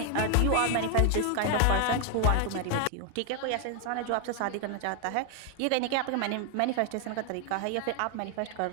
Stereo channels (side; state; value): both; different; correlation 0.00